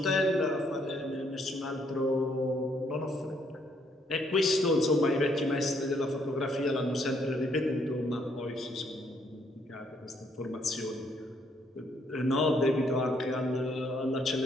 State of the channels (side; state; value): both; normal; correlation 0.70